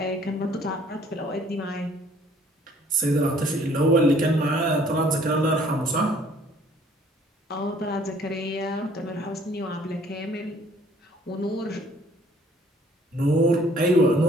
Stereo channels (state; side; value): normal; both; correlation 0.58